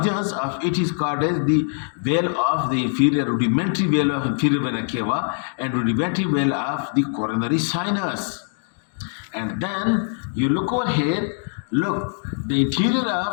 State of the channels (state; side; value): silent; right; digital silence